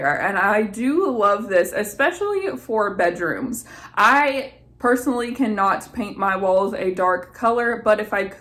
And I do love this, especially for bedrooms. I personally cannot paint my walls a dark color, but if I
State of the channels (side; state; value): both; identical; correlation 1.00